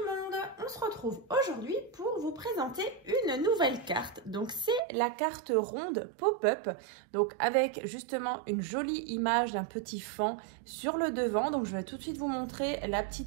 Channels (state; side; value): drops out; left; at 4.8 s